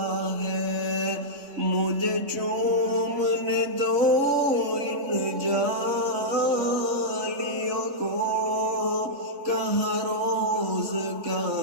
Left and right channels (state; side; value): late; left; 3.5 ms